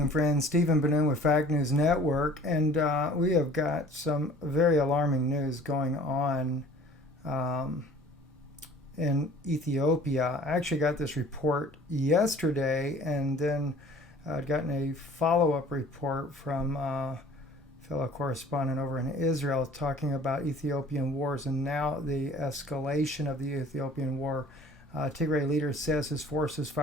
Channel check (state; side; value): normal; both; correlation 0.50